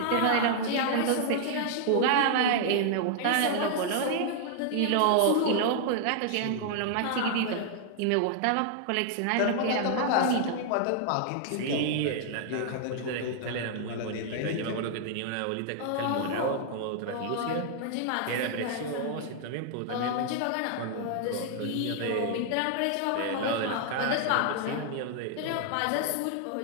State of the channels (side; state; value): both; different; correlation 0.00